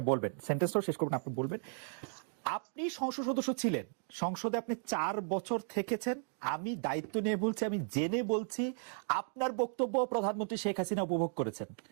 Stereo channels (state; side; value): silent; left; 54 dB below the other